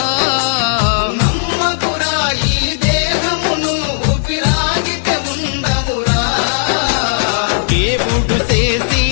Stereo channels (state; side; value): silent; right; 57 dB below the other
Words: నమ్మకురా ఈ దేహమును ఊపిరాగితే ఉండవురా దేవుడు